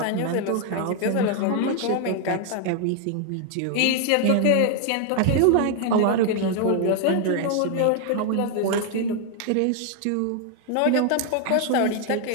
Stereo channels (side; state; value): both; different; correlation 0.00